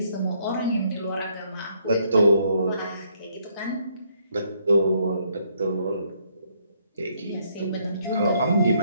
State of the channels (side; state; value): both; inverted; correlation -0.71